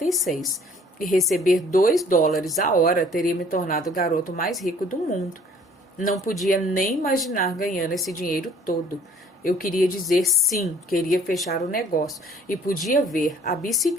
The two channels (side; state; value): both; normal; correlation 0.55